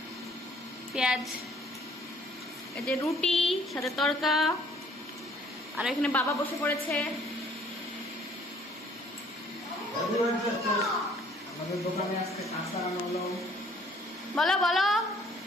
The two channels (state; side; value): normal; both; correlation 0.59